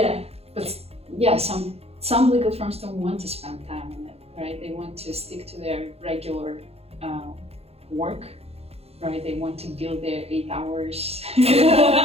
But yeah, some legal firms don't want to spend time on it, right? They want to stick to their regular work, right? They want to build their 8 hours,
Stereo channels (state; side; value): late; left; 0.29 ms